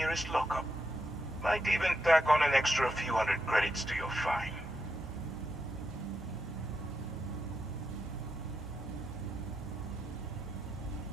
lockup. Might even tack on an extra few hundred credits to your fine.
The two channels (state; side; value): normal; both; correlation 0.84